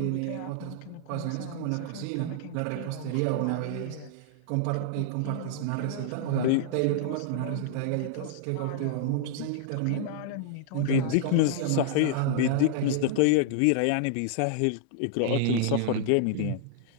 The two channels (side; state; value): both; different; correlation -0.01